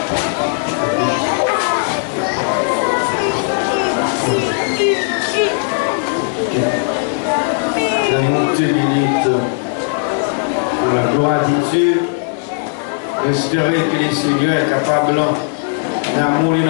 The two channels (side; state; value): right; silent; 62 dB below the other